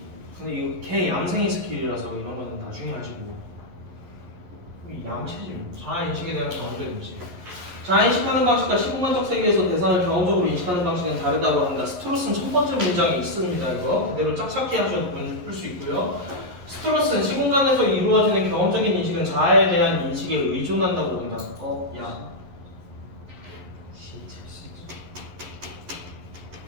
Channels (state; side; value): late; left; 11 ms